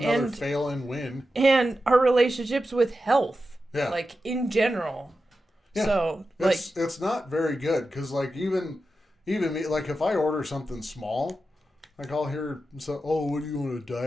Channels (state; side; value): normal; both; correlation 0.91